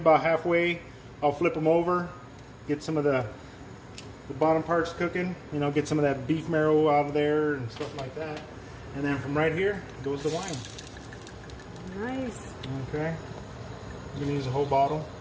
halfway, I'll flip them over, get some of the bottom parts cooking, you know, get some of that beef marrow out of there and stuff like that. And then from right here goes the wine. Nice. Okay. I'm gonna use a whole bottle,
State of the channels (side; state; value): both; identical; correlation 1.00